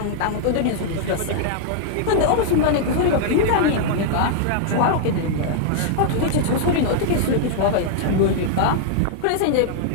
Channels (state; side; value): different; both; correlation -0.01